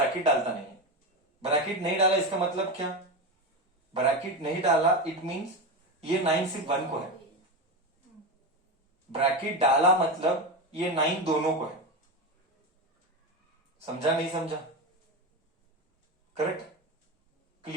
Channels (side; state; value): both; normal; correlation 0.17